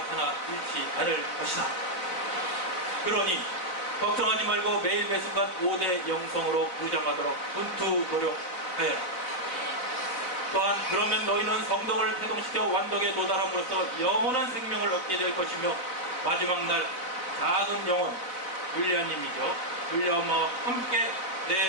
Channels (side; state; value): right; late; 4.0 ms